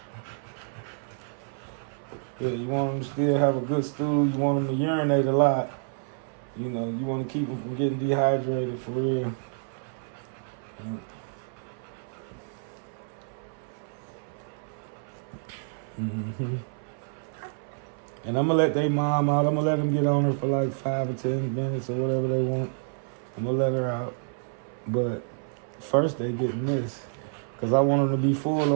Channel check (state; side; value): silent; left; 59 dB below the other